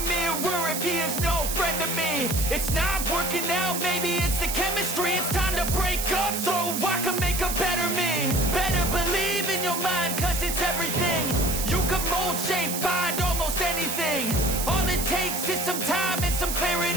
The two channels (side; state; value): right; noise; hiss, 3 dB below the sound